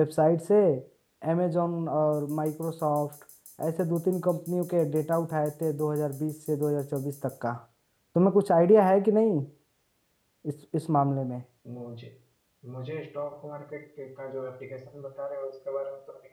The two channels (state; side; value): identical; both; correlation 1.00